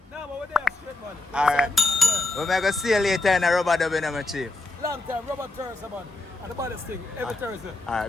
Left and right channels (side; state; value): right; quieter; 3.2 dB